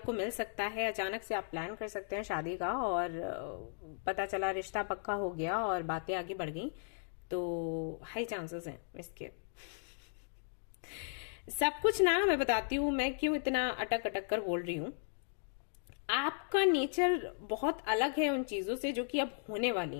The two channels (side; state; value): right; silent; digital silence